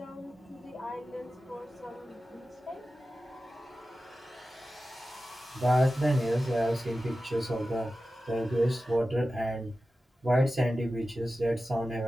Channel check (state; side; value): normal; both; correlation 0.94